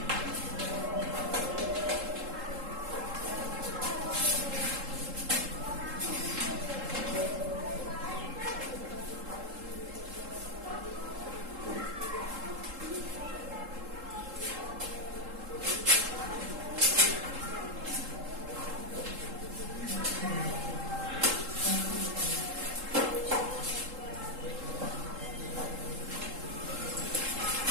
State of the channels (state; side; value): late; left; 3.7 ms